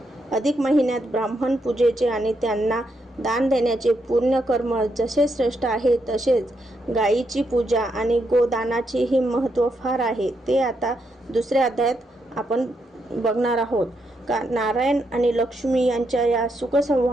अधिक महिन्यात ब्राह्मण पूजेचे आणि त्यांना दान देण्याचे पुण्यकर्म जसे श्रेष्ठ आहे, तसेच गायीची पूजा आणि गोदानाचेही महत्त्व फार आहे. ते आता दुसऱ्या अध्यायात आपण बघणार आहोत. नारायण आणि लक्ष्मी यांच्या या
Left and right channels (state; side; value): normal; both; correlation 0.80